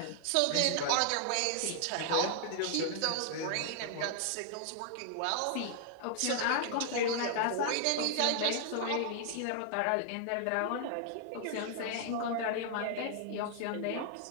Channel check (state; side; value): different; both; correlation -0.01